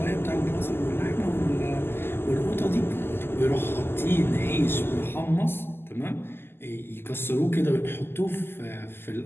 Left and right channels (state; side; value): late; right; 0.11 ms